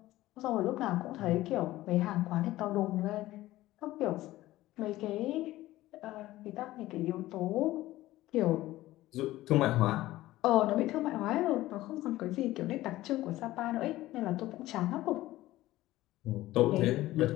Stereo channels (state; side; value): quieter; right; 16.4 dB